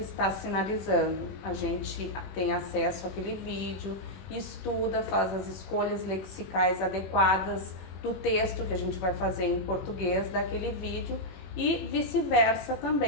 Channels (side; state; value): right; late; 21 ms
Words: sinalizando. A gente tem acesso àquele vídeo, estuda, faz as escolhas lexicais adequadas do texto que a gente vai fazer em português daquele vídeo e vice-versa